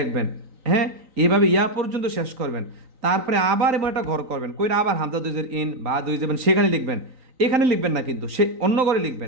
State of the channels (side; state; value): left; late; 3.9 ms